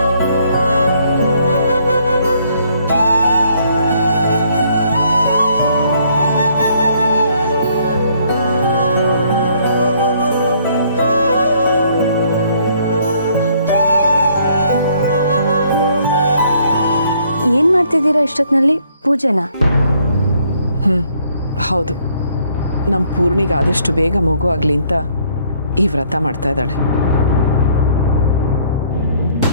ಏನು ಮಾಡ್ತಿದ್ದೀರಾ ಇಷ್ಟೊತ್ತಿನಲ್ಲಿ? ಪೂಜೆನಾ? ಹೌದು, ನಮ್ಮ ಪೂರ್ಣಿಗೆ ಆದಷ್ಟು ಬೇಗ ಮಗು ಆಗಲಿ ಅಂತ ಈ ವ್ರತ ಮಾಡ್ತಾ ಇದ್ದಾಳೆ.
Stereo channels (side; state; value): both; inverted; correlation -0.66